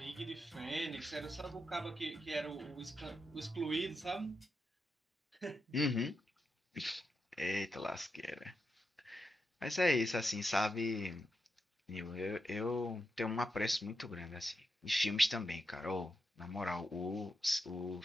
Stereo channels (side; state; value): both; normal; correlation 0.86